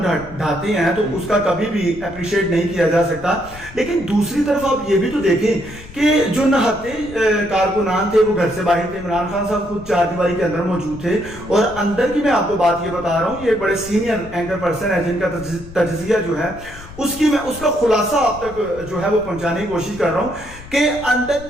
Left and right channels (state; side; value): noise; left; rumble, 17 dB below the sound